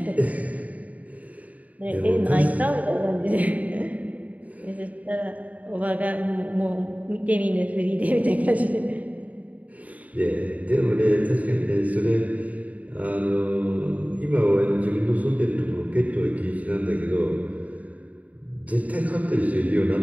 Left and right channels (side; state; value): left; late; 0.071 ms